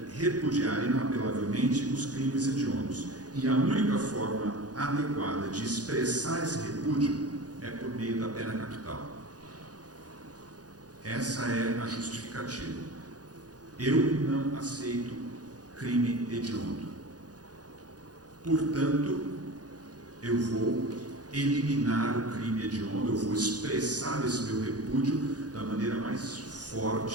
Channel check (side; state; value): left; late; 0.68 ms